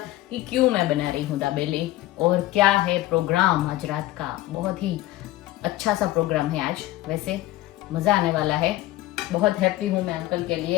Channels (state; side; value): quieter; right; 16.4 dB